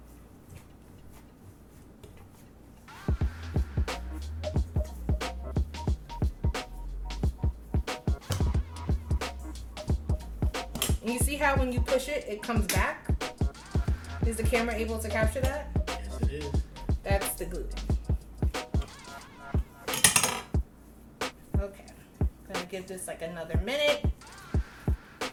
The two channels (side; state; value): both; identical; correlation 1.00